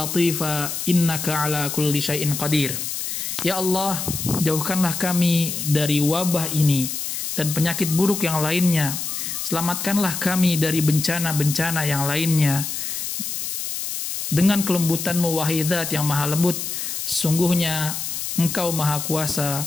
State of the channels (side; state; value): left; noise; hiss, 4 dB below the sound